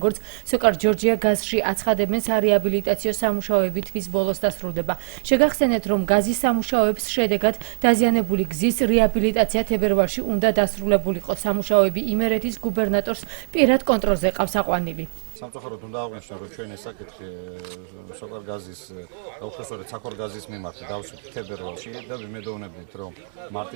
სოკარ ჯორჯია გაზში აცხადებენ, სარეაბილიტაციო სამუშაოები თვის ბოლოს დასრულდება. შეგახსენეთ, რომ გაზის სამუშაოების შედეგად დაზიანებული გზის რეაბილიტაცია თებერვალში უნდა დასრულებულიყო. სამუშაოები იმერეთის გუბერნატორს პირად კონტროლზე ყავს აყვანილი. სამწუხაროდ უნდა აღვნიშნო, რომ ჩვენ ეს საკითხი სოკარ გაზის უხეშორეთ საქორ გაზის მიმართ დავსვით თებერვალში და ვიმედოვნებით, რომ მარტი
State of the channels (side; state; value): left; silent; 63 dB below the other